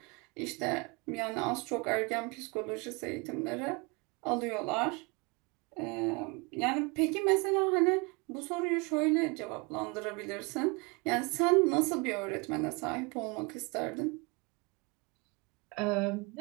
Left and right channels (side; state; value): left; quieter; 28.9 dB